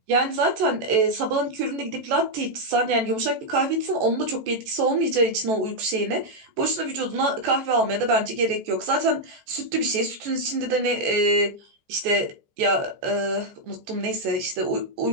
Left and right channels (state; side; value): late; left; 14 ms